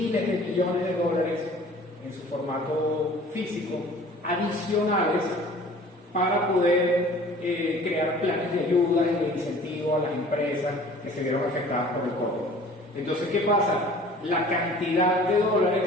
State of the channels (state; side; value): normal; both; correlation 0.48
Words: de millones de dólares en su formato físico adicionales para poder crear planes de ayuda y de incentivo a las empresas que se vieron afectadas por el COVID. Entonces, ¿qué pasa? La cantidad de